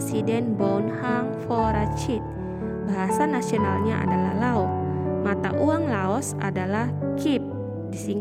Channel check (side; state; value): both; identical; correlation 1.00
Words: Bouhang Vorachit. Bahasa nasionalnya adalah Lao. Mata uang Laos adalah Kip,